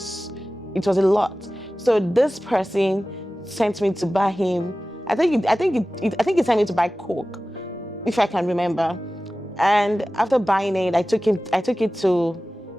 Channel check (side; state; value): both; normal; correlation 0.96